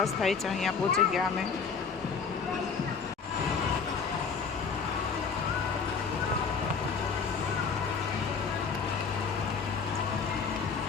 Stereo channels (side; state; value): right; quieter; 5.6 dB